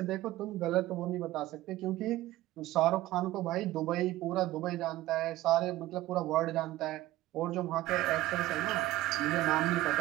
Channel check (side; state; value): left; quieter; 16.3 dB